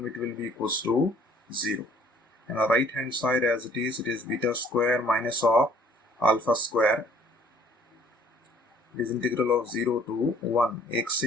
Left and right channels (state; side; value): normal; both; correlation 0.57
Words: will be equals to 0. And on the right hand side as it is beta square minus of alpha square. It is integral of 0 to 1 x